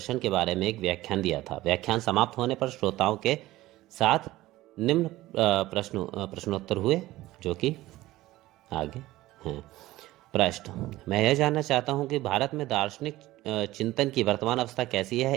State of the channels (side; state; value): left; quieter; 17.0 dB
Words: के बारे में एक व्याख्यान दिया था। व्याख्यान समाप्त होने पर श्रोताओं के साथ निम्न प्रश्नोत्तर हुए, जो कि आगे हैं। प्रश्न: मैं यह जानना चाहता हूं कि भारत में दार्शनिक चिंतन की वर्तमान अवस्था कैसी है।